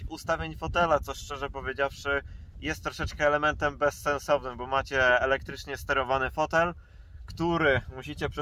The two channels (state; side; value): identical; both; correlation 1.00